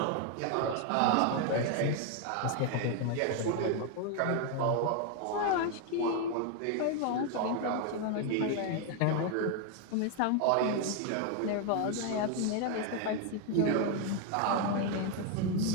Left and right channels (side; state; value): both; different; correlation 0.01